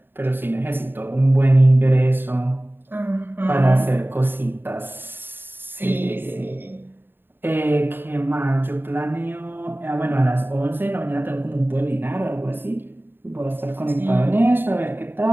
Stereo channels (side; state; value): left; late; 0.098 ms